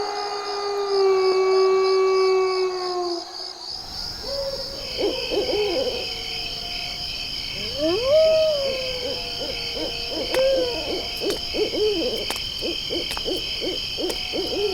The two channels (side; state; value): both; identical; correlation 1.00